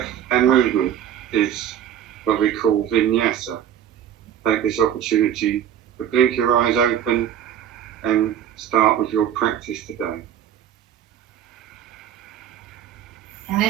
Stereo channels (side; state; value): left; quieter; 9.9 dB